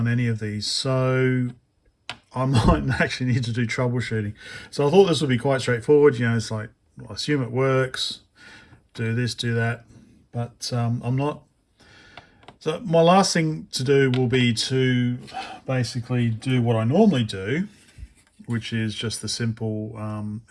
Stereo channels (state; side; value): identical; both; correlation 1.00